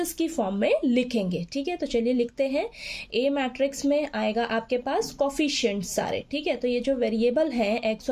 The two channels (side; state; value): both; identical; correlation 1.00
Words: की फॉर्म में लिखेंगे। ठीक है, तो चलिए लिखते हैं। ए मैट्रिक्स में आएगा आपके पास कोफिशिएंट्स सारे। ठीक है, तो ये जो वेरिएबल हैं एक्स